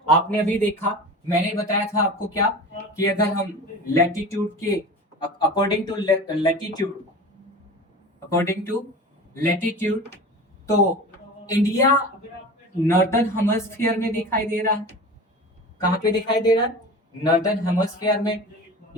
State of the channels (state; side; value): normal; both; correlation 0.34